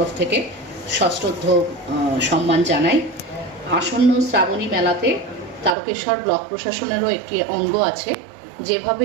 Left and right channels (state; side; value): drops out; left; at 5.8 s